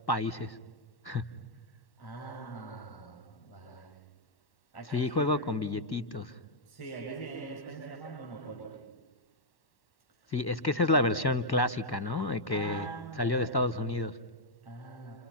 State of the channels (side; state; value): right; late; 1.1 ms